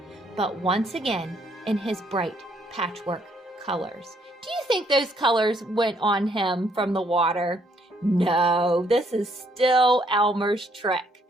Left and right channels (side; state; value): both; normal; correlation 0.69